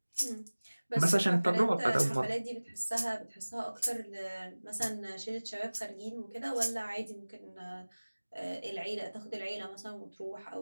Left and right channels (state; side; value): inverted; both; correlation -1.00